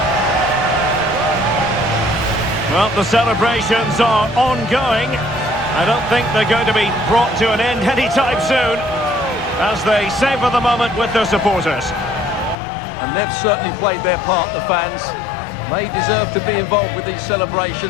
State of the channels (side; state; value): right; drops out; at 12.6 s